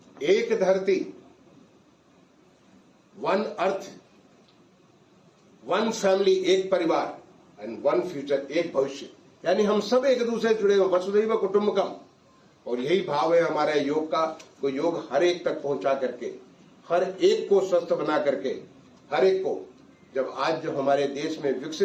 एक धरती, वन अर्थ, वन फैमिली, एक परिवार, एंड वन फ्यूचर, एक भविष्य। यानी हम सब एक दूसरे जुड़े हुए, वसुधैव कुटुंबकम। और यही भाव है हमारे योग का। तो योग हर एक तक पहुंचा करके, हर एक को स्वस्थ बना करके, हर एक को, जब आज जो हमारे देश में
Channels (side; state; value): both; identical; correlation 1.00